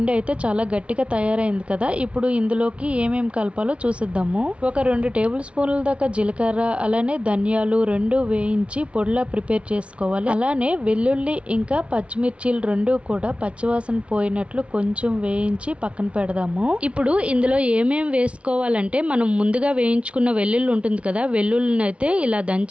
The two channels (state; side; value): late; left; 0.061 ms